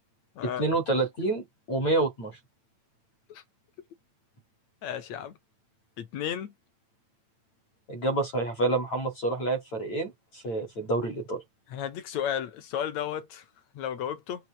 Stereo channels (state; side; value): late; right; 8.9 ms